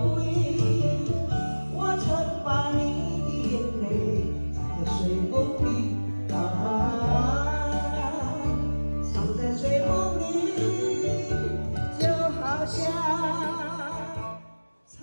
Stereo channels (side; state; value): both; inverted; correlation -1.00